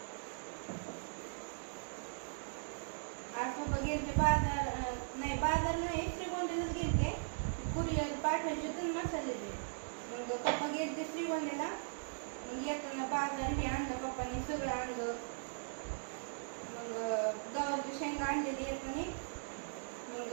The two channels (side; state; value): left; silent; digital silence